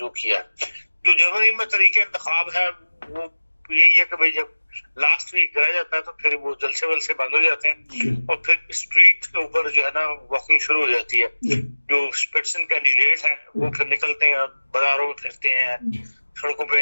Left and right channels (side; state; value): both; inverted; correlation -1.00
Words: किया। जो जर्मनी में तरीके इंतखाब है वो यही है कि भाई जब लास्ट वीक रह जाता है तो फिर वो जलसे वलसे बंद हो जाते हैं और फिर स्ट्रीट के ऊपर जो है ना वॉकिंग शुरू हो जाती है। जो स्पिट्सन कैंडिडेट है वो फिर निकलते हैं, बाजारों में फिरते हैं, सड़कों